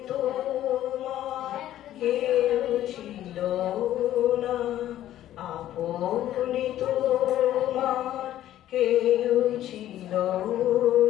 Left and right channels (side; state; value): right; quieter; 12.8 dB